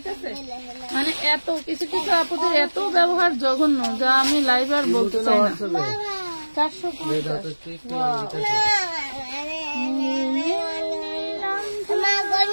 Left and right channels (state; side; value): inverted; both; correlation -1.00